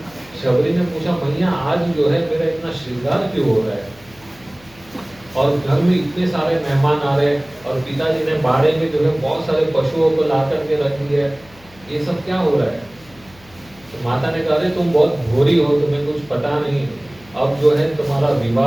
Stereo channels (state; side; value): noise; left; hum, 25 dB below the sound